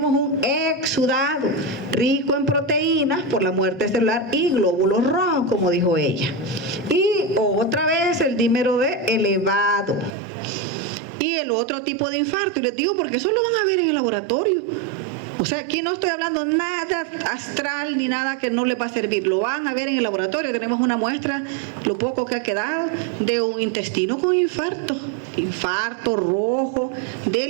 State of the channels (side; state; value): left; drops out; at 10.2 s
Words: un exudado rico en proteínas por la muerte celular y glóbulos rojos, como dijo ella. Y otra vez el dímero D elevado. Y el otro tipo de infarto, y les digo porque eso lo van a ver en el laboratorio. O sea, aquí no estoy hablando nada astral ni nada que no le va a servir. Lo van a ver en el laboratorio. Tenemos una muestra, lo poco que ha quedado, de un intestino con infarto. Infarto rojo